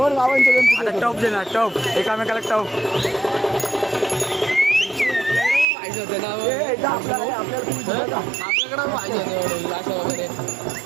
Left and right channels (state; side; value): drops out; left; at 5.7 s